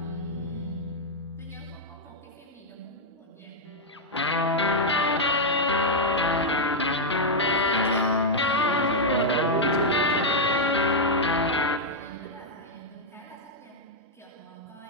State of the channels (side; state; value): both; normal; correlation -0.02